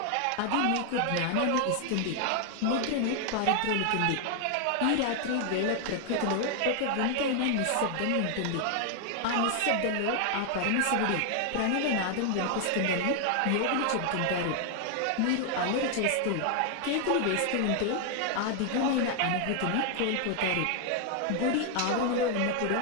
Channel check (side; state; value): both; different; correlation 0.00